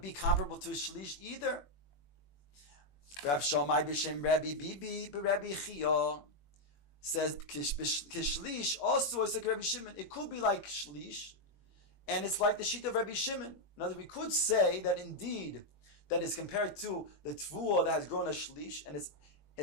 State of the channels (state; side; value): late; right; 21 ms